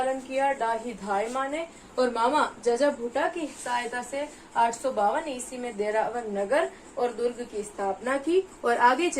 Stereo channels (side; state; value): both; identical; correlation 1.00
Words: किया डाही धाय माँ ने, और मामा जजा भूटा की सहायता से 852 ईस्वी में देरावर नगर और दुर्ग की स्थापना की, और आगे